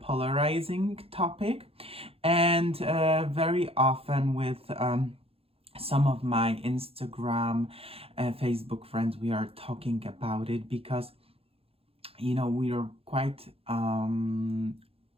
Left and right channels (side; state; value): left; late; 0.28 ms